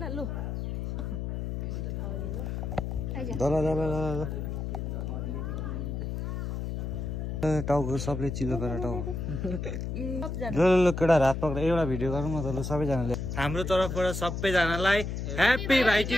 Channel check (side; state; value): left; noise; hum, 3 dB below the sound